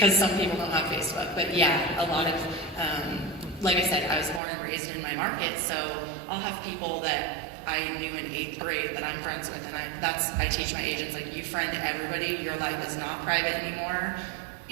some people don't have Facebook. But yeah, a lot of, like I said, I was born and raised in my market, so I'll have people that I knew in 8th grade that I'm friends with, and I teach my agents, like, you friend everybody, your life is not private anymore,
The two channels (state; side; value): drops out; left; at 4.4 s